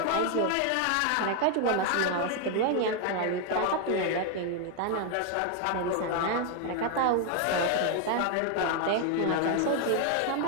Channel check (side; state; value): both; different; correlation 0.00